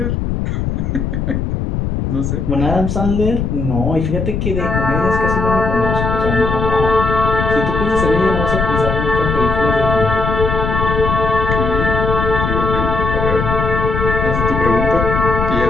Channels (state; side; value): noise; left; rumble, 1 dB below the sound